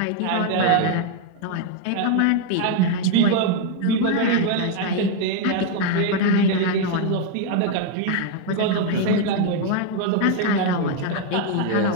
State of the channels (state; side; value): different; both; correlation 0.01